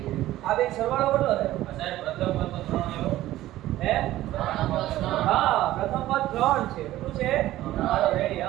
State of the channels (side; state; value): left; quieter; 15.1 dB